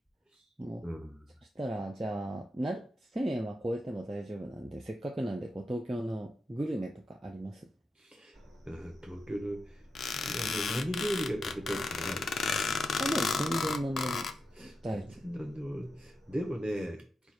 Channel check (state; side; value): normal; both; correlation 0.87